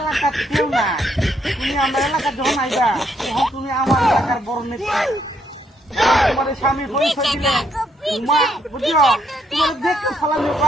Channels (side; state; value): both; normal; correlation 0.73